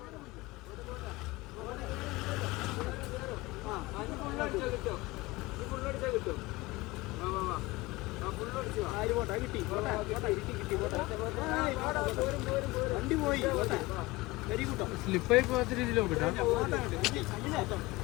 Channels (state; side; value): quieter; right; 21.0 dB